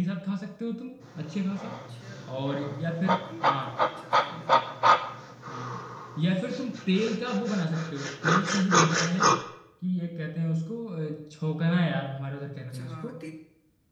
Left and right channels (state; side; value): identical; both; correlation 1.00